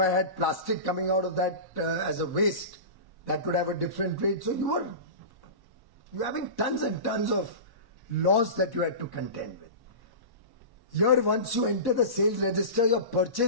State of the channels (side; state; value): left; late; 1.1 ms